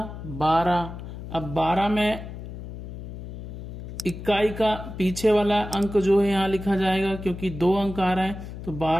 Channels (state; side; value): noise; left; hum, 10 dB below the sound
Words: 12। अब 12 में इकाई का पीछे वाला अंक जो है यहाँ लिखा जाएगा, क्योंकि 2 अंक आ रहा है तो